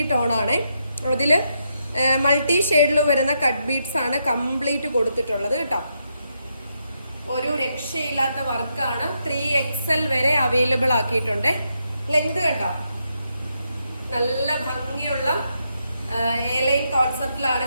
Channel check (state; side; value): inverted; both; correlation -0.80